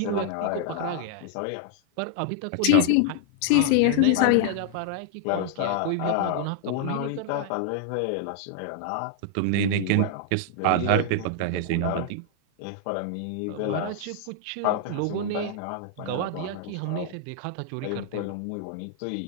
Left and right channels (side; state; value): both; different; correlation -0.01